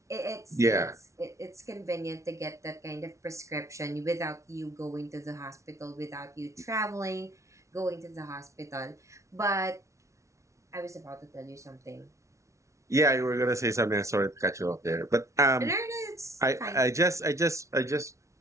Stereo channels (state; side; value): late; left; 0.14 ms